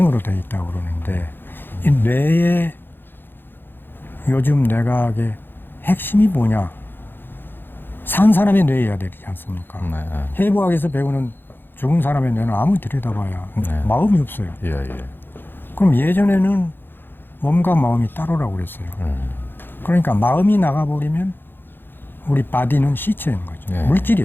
되어 있다고 그러는데 이 뇌의 요즘 뇌과학의 핵심이 뭐냐? 산 사람의 뇌여야 되지 않습니까? 네. 해부학에서 배우는 죽은 사람의 뇌는 아무리 들여다봐야 네. 마음이 없어요. 예, 예. 그럼 예전에는 몸과 마음이 따로라고 그랬어요. 그러니까 마음이 나가버리면 우리 바디는 시체인 거죠. 네.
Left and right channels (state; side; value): late; right; 0.099 ms